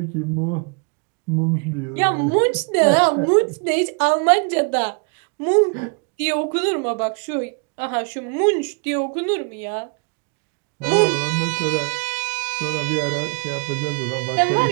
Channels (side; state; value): left; quieter; 33.8 dB